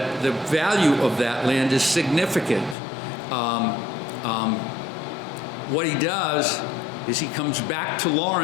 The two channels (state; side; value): drops out; right; at 2.8 s